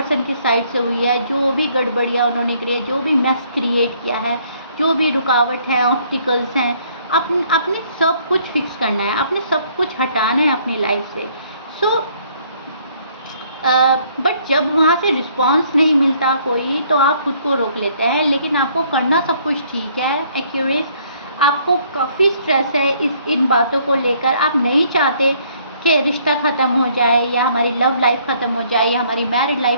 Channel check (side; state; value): both; inverted; correlation -0.63